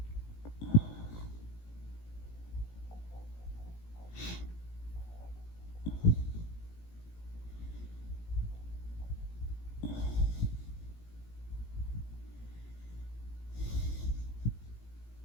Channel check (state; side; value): late; right; 18 ms